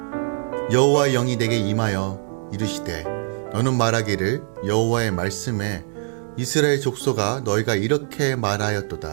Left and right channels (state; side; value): silent; left; digital silence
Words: 여호와의 영이 내게 임하여 이르시되 너는 말하기를 여호와의 말씀에 이스라엘 족속아, 너희가 이렇게